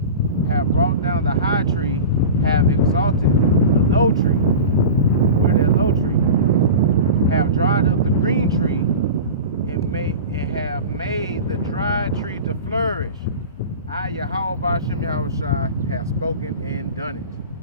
Have brought down the high tree, have exalted the low tree. We're that low tree. Have dried up the green tree, and have made the dry tree to flourish. I, Yahweh Ba'Shem Yahushua, have spoken and done it.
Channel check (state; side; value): inverted; both; correlation -0.32